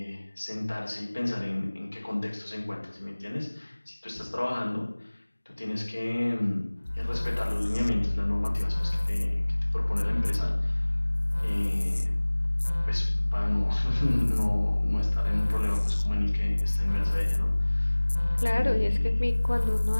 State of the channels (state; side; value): inverted; both; correlation -1.00